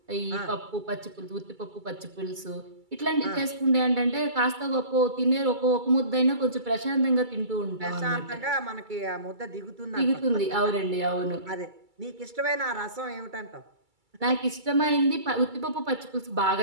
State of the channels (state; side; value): late; left; 2.3 ms